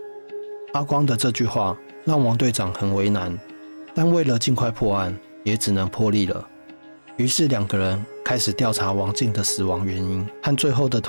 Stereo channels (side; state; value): both; inverted; correlation -1.00